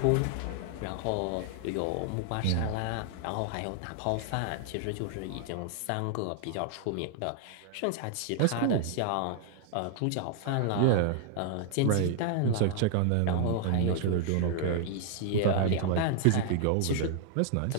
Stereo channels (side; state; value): both; different; correlation 0.00